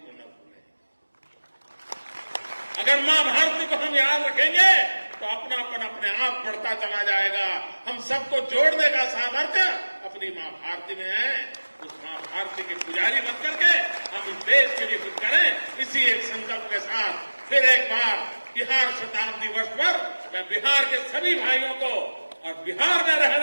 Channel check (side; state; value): both; inverted; correlation -1.00